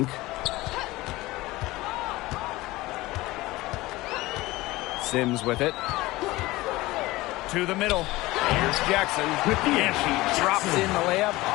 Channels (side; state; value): right; quieter; 19.5 dB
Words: Sims with it. To the middle. Here's Jackson. And she drops in the layup